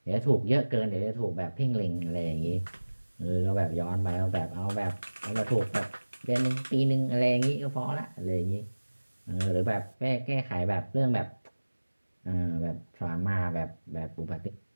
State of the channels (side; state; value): both; inverted; correlation -1.00